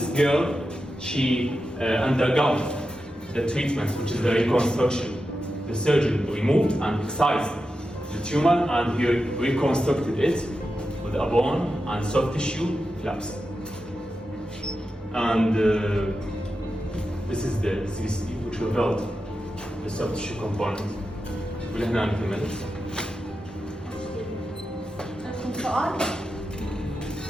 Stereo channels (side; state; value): both; normal; correlation 0.90